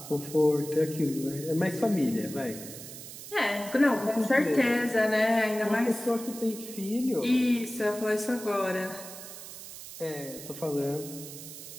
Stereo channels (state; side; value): noise; right; hiss, 13 dB below the sound